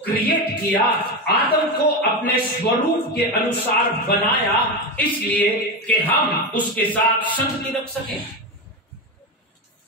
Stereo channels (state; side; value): normal; both; correlation 0.16